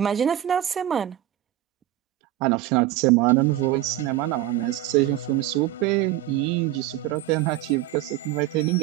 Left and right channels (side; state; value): left; quieter; 13.8 dB